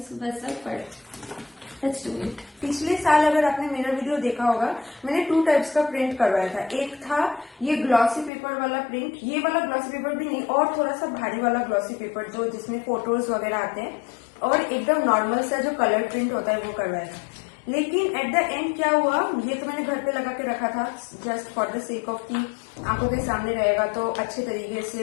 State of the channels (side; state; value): right; drops out; at 8.3 s